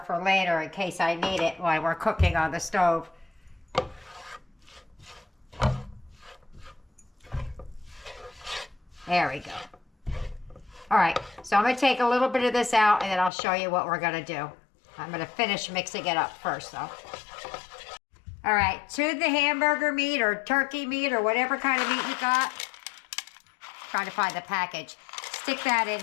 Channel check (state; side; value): drops out; right; at 13.3 s